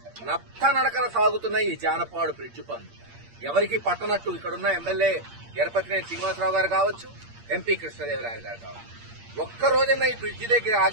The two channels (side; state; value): left; late; 8.6 ms